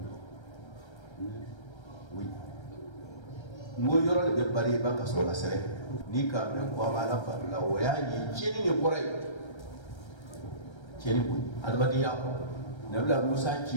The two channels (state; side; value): late; right; 1.3 ms